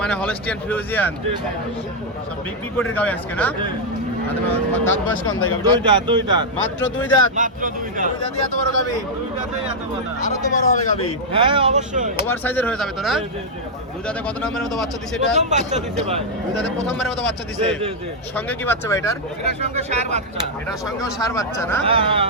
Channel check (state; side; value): normal; both; correlation -0.03